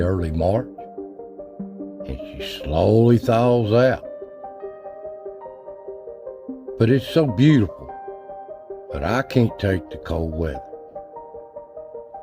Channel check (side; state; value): both; identical; correlation 1.00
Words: early March, and she slowly thaws out. But it's so beautiful, but I can't take the cold weather.